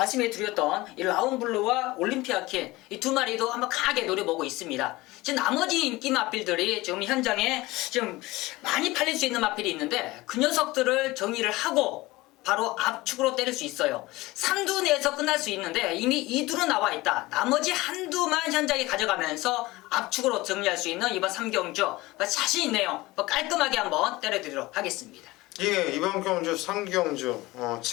드렸던 이 라운블루와 올림피아킨 이 2마리도 한번 강하게 노려보고 있습니다. 지금 나머지 인기 마필들이 지금 현장에 지금 많이 팔릴 수 있는 마필이 있는데 그 녀석들을 정리를 하고 바로 압축으로 때릴 수 있어요. 3두 내에서 끝날 수 있는데 이미 2두로 나와 있다. 나머지 한두만 현장에 가져가면서 압축으로 정리할 수 있는 이번 3경주 자신 있네요. 깔끔하게 한번 때려드리도록 하겠습니다. 예, 이번 경주 3경주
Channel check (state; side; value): quieter; right; 20.1 dB